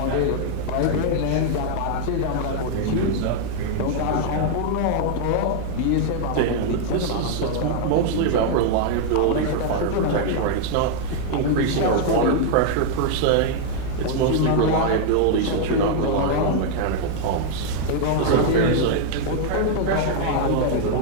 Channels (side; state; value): both; different; correlation 0.00